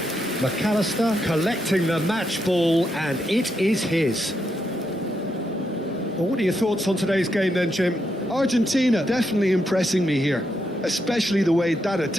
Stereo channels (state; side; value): normal; both; correlation 0.81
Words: McAllister collecting the match ball, and it is his. Well, what are your thoughts on today's game then, Jim? Argentina definitely impressing me here, especially the way that